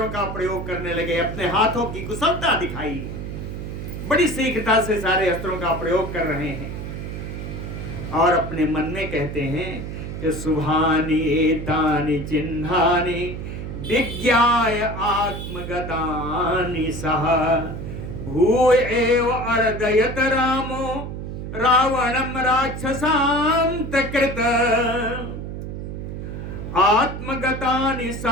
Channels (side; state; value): right; noise; hum, 7 dB below the sound